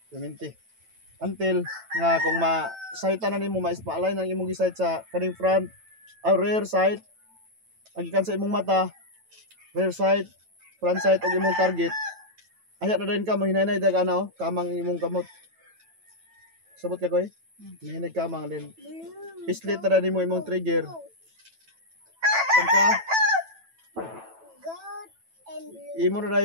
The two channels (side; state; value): left; late; 9.1 ms